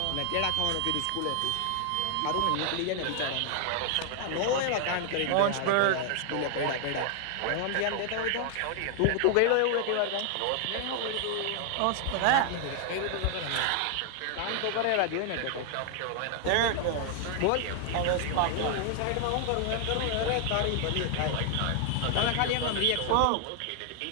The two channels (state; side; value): different; both; correlation 0.00